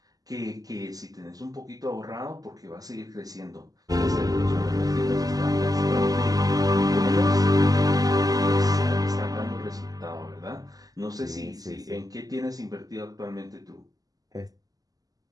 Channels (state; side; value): late; left; 0.17 ms